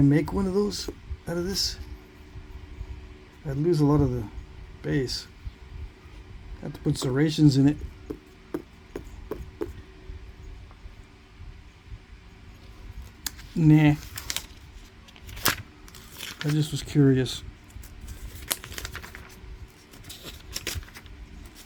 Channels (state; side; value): identical; both; correlation 1.00